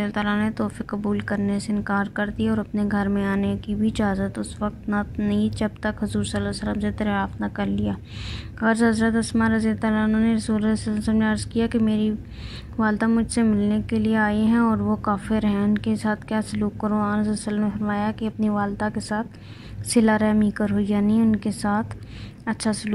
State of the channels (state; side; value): identical; both; correlation 1.00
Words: عنہا نے تحفے قبول کرنے سے انکار کر دیا اور اپنے گھر میں آنے کی بھی اجازت اس وقت نہ نہیں جب تک حضور صلی اللہ علیہ وسلم سے دریافت نہ کر لیا۔ غرض حضرت اسماء رضی اللہ عنہا نے رسول اللہ صلی اللہ علیہ وسلم نے عرض کیا کہ میری والدہ مجھ سے ملنے کے لیے آئی ہیں اور وہ کافر ہیں، ان کے ساتھ کیا سلوک کروں؟ آن صلی اللہ علیہ وسلم نے فرمایا کہ اپنی والدہ کے ساتھ صلہ رحمی کرو، یعنی ان کے ساتھ اچھا